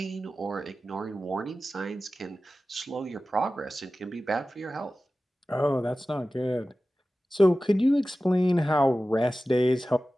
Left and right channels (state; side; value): normal; both; correlation 0.95